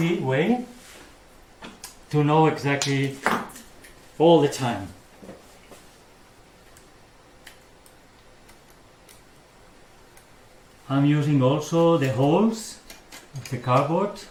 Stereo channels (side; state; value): both; identical; correlation 1.00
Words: way to know exactly all the time. I'm using also the holes of the cardboard